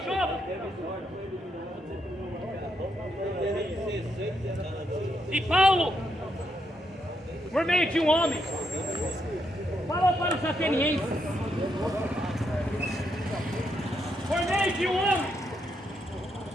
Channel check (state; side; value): normal; both; correlation 0.79